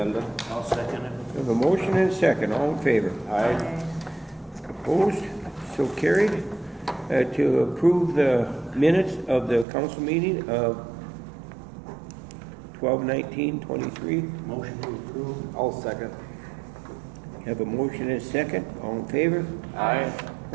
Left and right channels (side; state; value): left; drops out; at 9.7 s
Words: I'll second it. We have a motion and a second. All in favor? Aye. Opposed? So carried. To approve the minutes of the council meeting of 12/19/23. Motion to approve. I'll second. Have a motion and a second. All in favor? Aye.